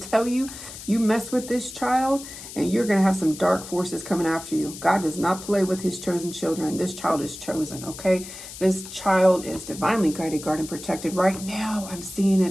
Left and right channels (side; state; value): left; noise; hiss, 13 dB below the sound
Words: you, you mess with this child and you're going to have some dark forces coming after you. God does not play with his chosen children. This child is chosen, okay? This child is divinely guided, guarded, and protected. Right now, I'm seeing